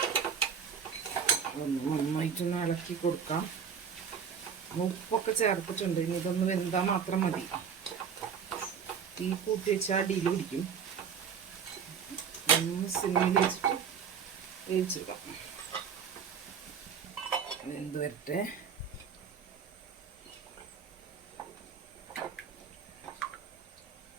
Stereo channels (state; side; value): quieter; left; 7.0 dB